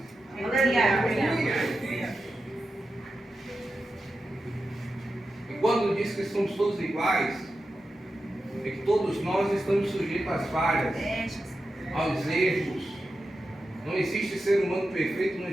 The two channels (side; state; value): both; normal; correlation 0.90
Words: E quando diz que somos todos iguais, é que todos nós estamos sujeitos às falhas, aos erros. Não existe ser humano perfeito, não